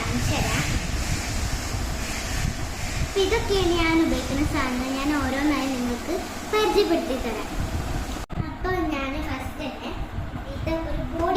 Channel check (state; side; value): identical; both; correlation 1.00